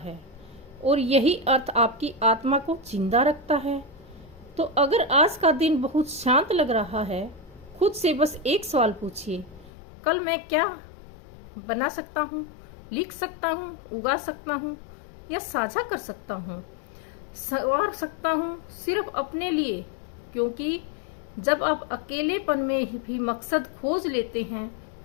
और यही अर्थ आपकी आत्मा को जिंदा रखता है। तो अगर आज का दिन बहुत शांत लग रहा है, खुद से बस एक सवाल पूछिए, कल मैं क्या बना सकता हूँ, लिख सकता हूँ, उगा सकता हूँ या साझा कर सकता हूँ, संवार सकता हूँ सिर्फ अपने लिए। क्योंकि जब आप अकेलेपन में भी मकसद खोज लेते हैं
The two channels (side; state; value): right; drops out; at 9.7 s